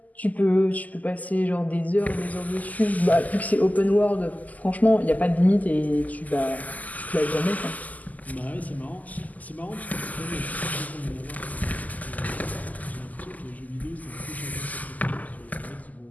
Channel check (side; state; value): right; late; 0.079 ms